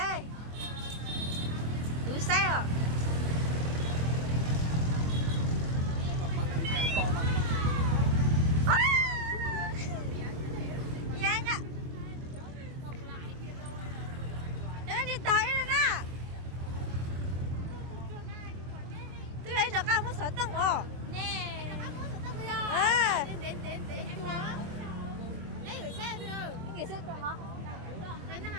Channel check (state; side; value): late; left; 24 ms